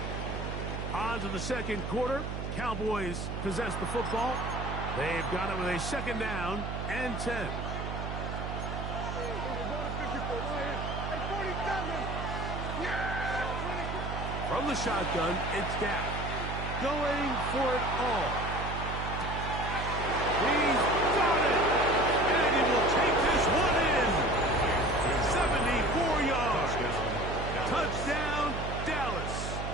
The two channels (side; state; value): right; noise; hum, 5 dB below the sound